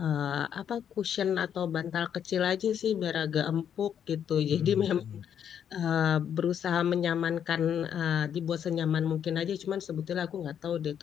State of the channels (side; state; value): right; quieter; 8.8 dB